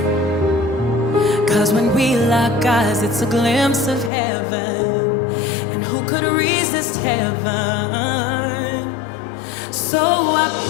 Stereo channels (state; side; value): drops out; right; at 4.1 s